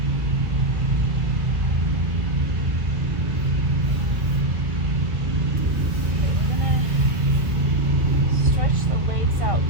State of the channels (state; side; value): late; left; 1.7 ms